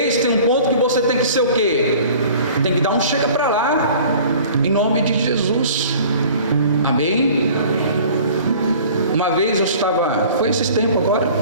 um ponto que você tem que ser o quê? Tem que dar um chega para lá. Em nome de Jesus. Amém? Uma vez eu estava, foi esses tempos agora,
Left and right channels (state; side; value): inverted; both; correlation -0.47